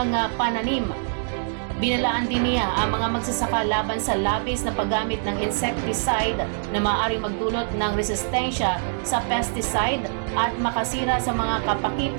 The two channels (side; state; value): left; silent; digital silence